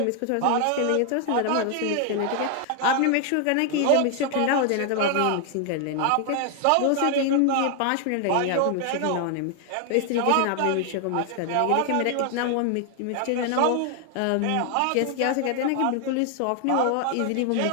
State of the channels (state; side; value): different; both; correlation 0.00